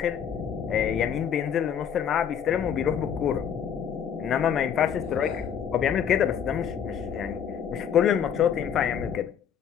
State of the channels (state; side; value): quieter; right; 8.3 dB